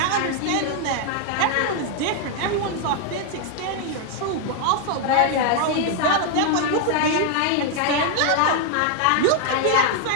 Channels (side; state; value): both; different; correlation 0.00